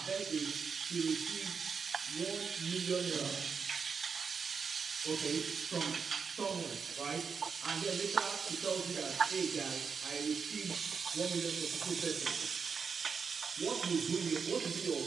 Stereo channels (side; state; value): left; quieter; 5.8 dB